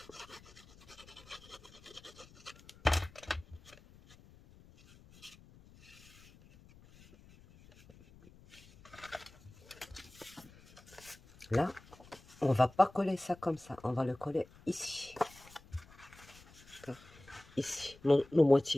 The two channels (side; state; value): left; noise; rumble, 23 dB below the sound